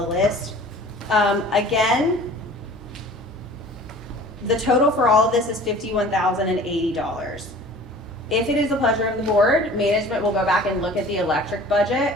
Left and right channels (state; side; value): normal; both; correlation 0.45